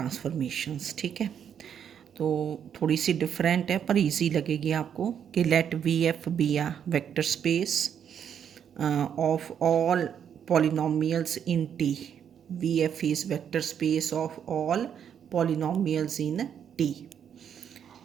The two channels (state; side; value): quieter; left; 8.4 dB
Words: ठीक है, तो थोड़ी सी डिफरेंट है पर इजी लगेगी आपको कि let V F be a vector space of all polynomials in T. V F is vector space of all polynomials in T